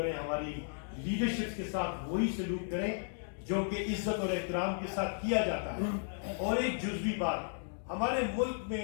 ہماری لیڈرشپ کے ساتھ وہی سلوک کریں جو کہ عزت اور احترام کے ساتھ کیا جاتا ہے۔ اور ایک جزوی بات، ہمارے ملک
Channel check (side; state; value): right; silent; digital silence